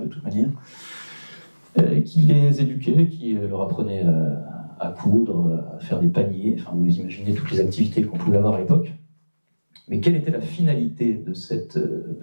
de toute manière, qui les éduquait, qui leur apprenait à coudre, à faire des paniers, enfin vous imaginez toutes les activités qu'on pouvait avoir à l'époque. Mais quelle était la finalité de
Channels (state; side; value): inverted; both; correlation -1.00